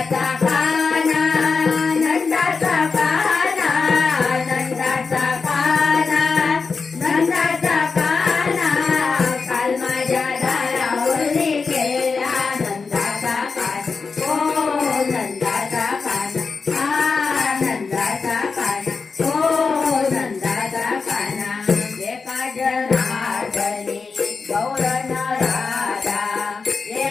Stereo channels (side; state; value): right; quieter; 4.8 dB